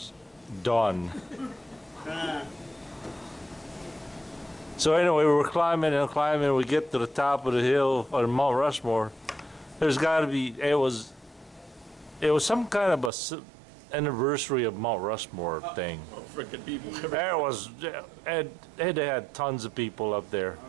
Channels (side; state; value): left; drops out; at 13.1 s